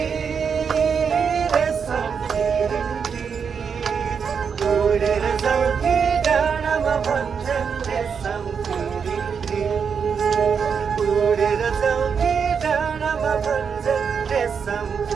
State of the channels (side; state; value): left; quieter; 6.4 dB